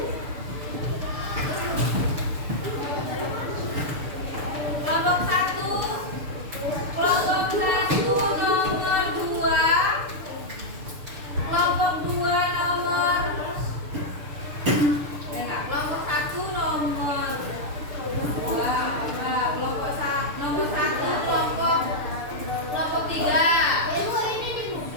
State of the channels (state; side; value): late; left; 6.7 ms